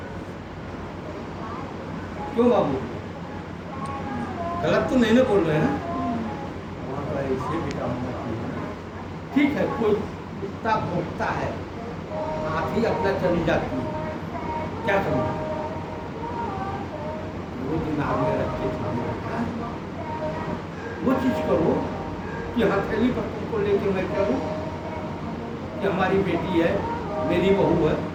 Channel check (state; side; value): identical; both; correlation 1.00